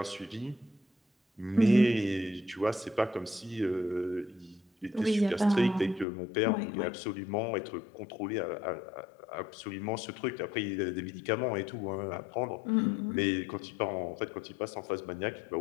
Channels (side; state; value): right; drops out; at 6.1 s